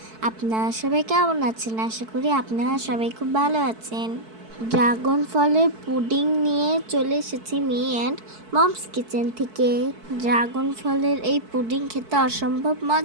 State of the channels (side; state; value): left; late; 4.6 ms